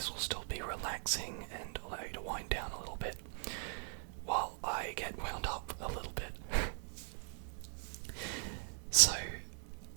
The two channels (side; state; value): left; silent; 51 dB below the other